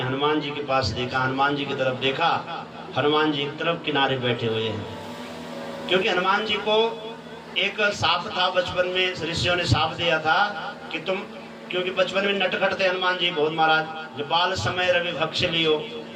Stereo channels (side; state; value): both; identical; correlation 1.00